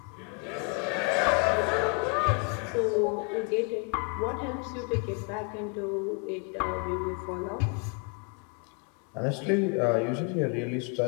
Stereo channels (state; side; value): quieter; right; 35.5 dB